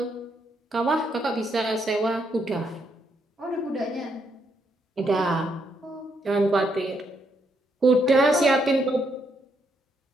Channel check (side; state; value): both; normal; correlation 0.76